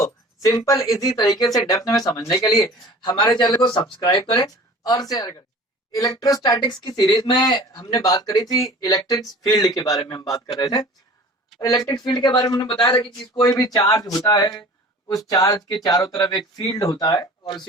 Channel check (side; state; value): both; normal; correlation 0.43